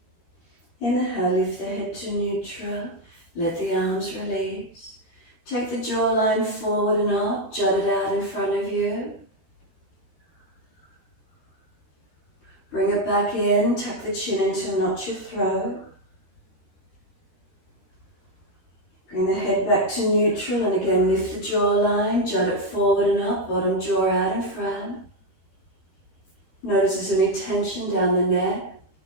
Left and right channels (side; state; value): right; late; 13 ms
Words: Inhale, lift the head to neutral, let the arms release. Take the jawline forward and up, jut it out in front of you. Bring it back back in, tuck the chin in to notch your throat. Bring the head back to neutral and again lift the jawline, jut it forward and up, bottom jaw out in front. Notice there's any tension down the neck.